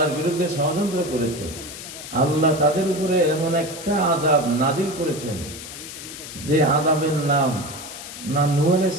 বিরুদ্ধে ষড়যন্ত্র করেছে, আল্লাহ তাদের উপরে এমন একটা আযাব নাজিল করেছেন যে আযাবের নাম না নূহ আলাইহিস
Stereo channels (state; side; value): noise; left; hiss, 11 dB below the sound